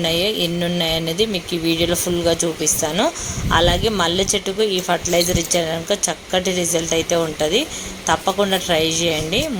ఎన్ని ఉన్నాయో అనేది మీకు ఈ వీడియోలో ఫుల్గా చూపిస్తాను. అలాగే మల్లె చెట్టుకు ఈ ఫర్టిలైజర్ ఇచ్చారనుకో చక్కటి రిజల్ట్ అయితే ఉంటుంది. తప్పకుండా ట్రై చేయండి.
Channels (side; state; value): both; identical; correlation 1.00